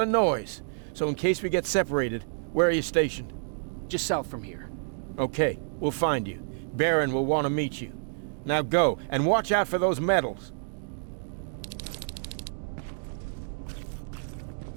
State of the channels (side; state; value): left; silent; digital silence